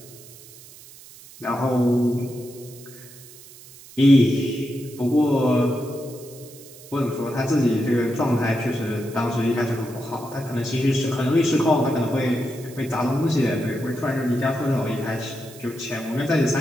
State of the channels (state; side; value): noise; right; hiss, 20 dB below the sound